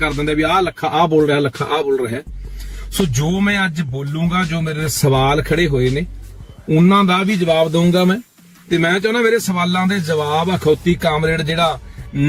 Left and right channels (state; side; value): identical; both; correlation 1.00